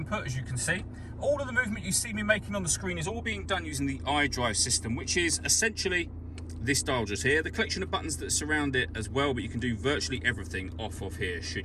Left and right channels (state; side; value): identical; both; correlation 1.00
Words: as you can see. All of the movement you see me making on the screen is all being done using the iDrive system, which is essentially this dial just here, the collection of buttons that surround it as well, but you can do virtually everything off of here